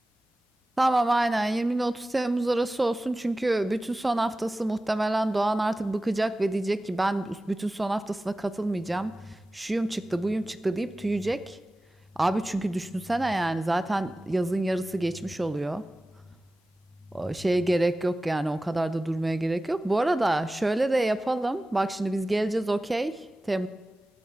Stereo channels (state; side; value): normal; both; correlation 0.96